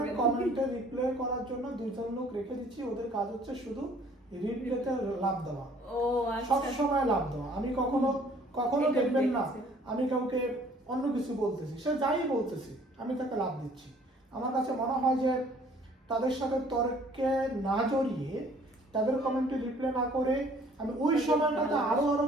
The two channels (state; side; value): normal; both; correlation 0.56